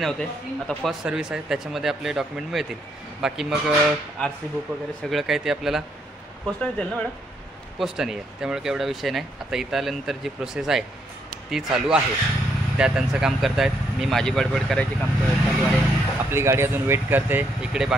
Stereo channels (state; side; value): normal; both; correlation 0.74